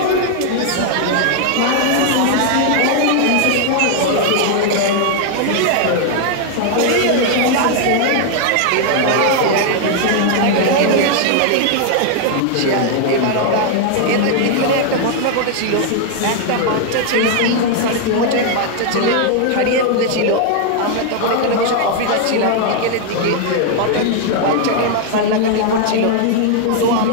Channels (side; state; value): both; different; correlation 0.00